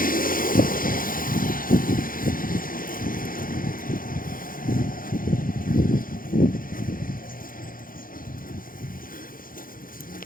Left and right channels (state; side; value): late; right; 0.41 ms